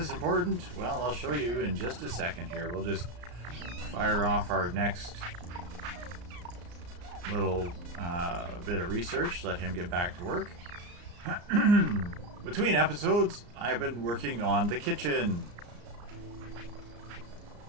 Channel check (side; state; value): left; late; 34 ms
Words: important? Well, I'll show you in just a second here. We'll just fire off our next little bit of research, let him get back to work. Between episodes, I've been working on the kitchen.